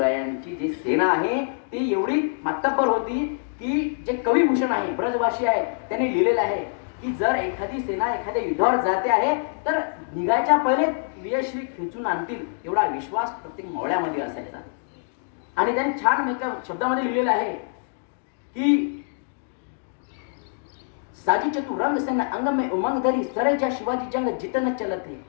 जी सेना आहे ती एवढी मातब्बर होती की जे कविभूषण आहे, ब्रजभाषी आहे, त्यांनी लिहिलेलं आहे की जर एखादी सेना एखाद्या युद्धावर जाते आहे तर निघायच्या पहिले विजयश्री खेचून आणतील एवढा विश्वास प्रत्येक मावळ्यामध्ये असायचा. आणि त्यांनी छान एका शब्दामध्ये लिहिलेलं आहे की साजी चतुरंग सेना अंग में उमंग धरी, सरे जा शिवाजी जंग जितन चलत है,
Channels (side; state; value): right; silent; digital silence